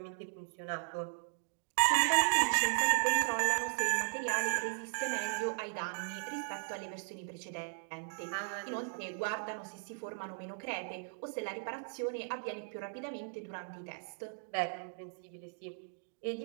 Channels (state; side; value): silent; left; digital silence